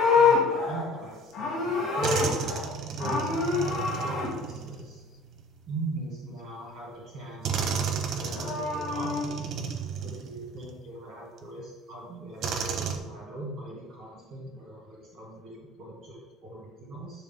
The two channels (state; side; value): normal; both; correlation 0.47